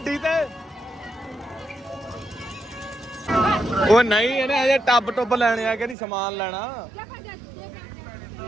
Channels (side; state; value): left; drops out; at 6.0 s